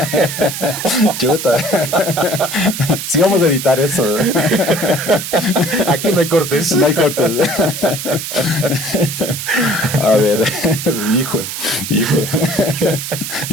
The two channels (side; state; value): right; noise; hiss, 6 dB below the sound